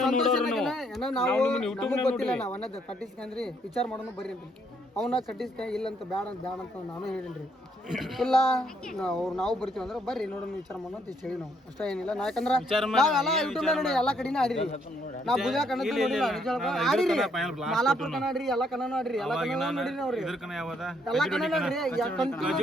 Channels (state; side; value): normal; both; correlation 0.71